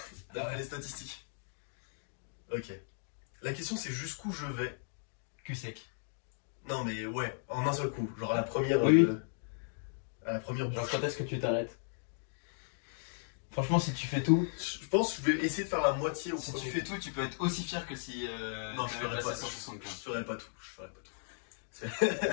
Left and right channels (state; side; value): silent; right; digital silence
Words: D'après les statistiques. Ok. La question c'est jusqu'où je vais. Cul sec. Non mais ouais, en un seul coup. Genre à la première... Oui. À la première Genre bouche. quand est-ce que tu t'arrêtes? Franchement, si tu fais tout... Je pense que je vais essayer de faire la moitié au Si premier. tu fais tout, tu peux être aussi fier que si... Non, je ferai pas, 175. je ferai pas tout. Je ferai pas tout.